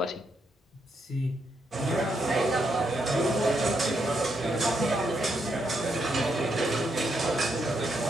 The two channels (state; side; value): normal; both; correlation 0.79